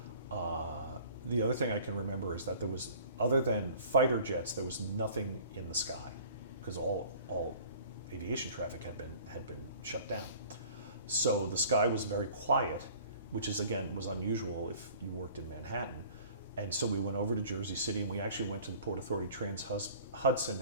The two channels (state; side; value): inverted; both; correlation -0.48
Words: The other thing I can remember is that there was, other than fighter jets, there was nothing in the sky because all aviation traffic had been shut down. So the sky was very quiet, which is again was unusual if you worked in Manhattan. And so we went over to Jersey City, and we actually went to the Port Authority Trans-Hudson